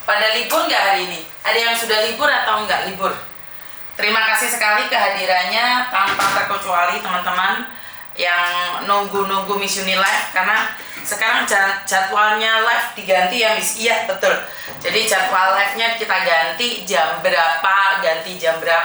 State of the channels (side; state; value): both; identical; correlation 1.00